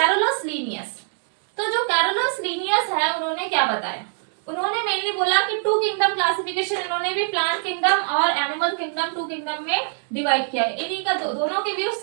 लीनियस। तो जो कैरोलस लीनियस है उन्होंने क्या बताया, उन्होंने मेनली बोला कि 2 किंगडम क्लासिफिकेशन, इन्होंने भी प्लांट किंगडम और एनिमल किंगडम 2 किंगडम में डिवाइड किया है। इन्हीं का दोनों के व्यू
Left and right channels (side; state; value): left; silent; digital silence